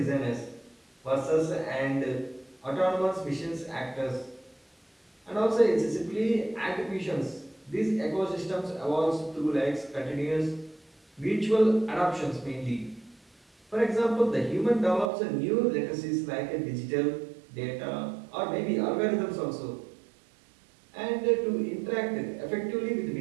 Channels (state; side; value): drops out; left; at 15.1 s